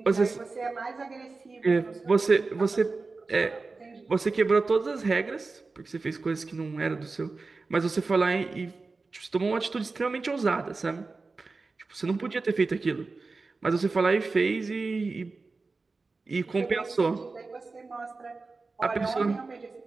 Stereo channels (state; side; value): quieter; left; 3.9 dB